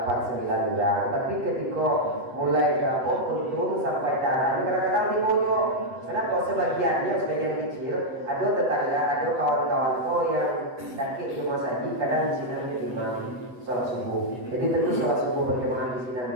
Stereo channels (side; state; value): left; late; 7.9 ms